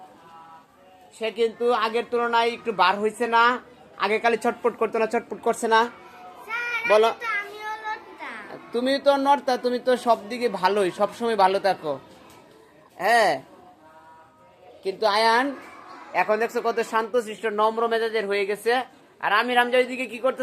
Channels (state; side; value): identical; both; correlation 1.00